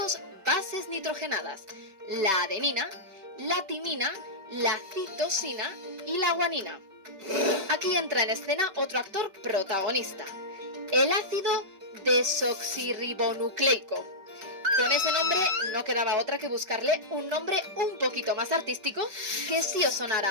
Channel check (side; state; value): left; late; 5.2 ms